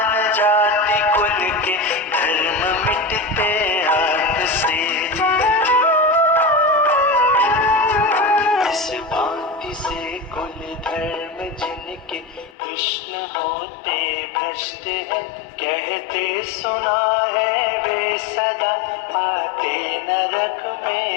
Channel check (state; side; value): drops out; right; at 12.6 s